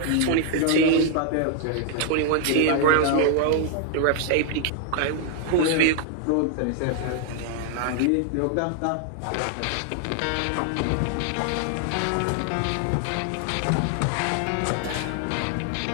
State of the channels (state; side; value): different; both; correlation 0.00